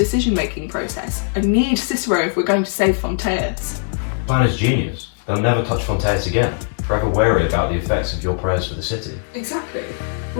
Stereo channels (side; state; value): right; silent; digital silence